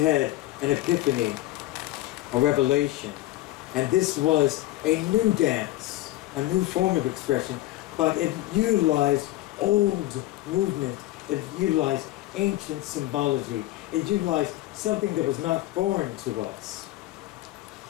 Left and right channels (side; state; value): right; quieter; 16.3 dB